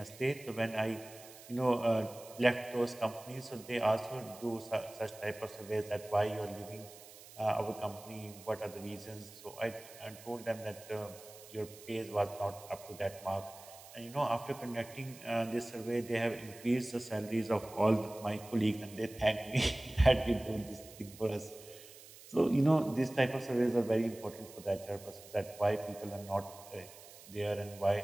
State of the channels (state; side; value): noise; right; hiss, 18 dB below the sound